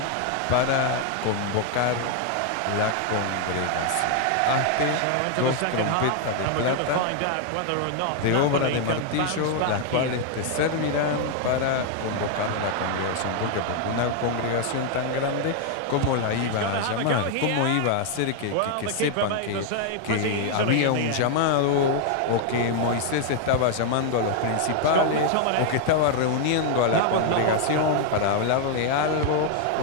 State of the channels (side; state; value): both; different; correlation 0.00